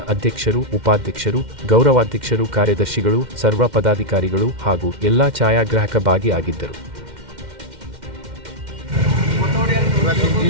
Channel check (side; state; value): left; late; 2.1 ms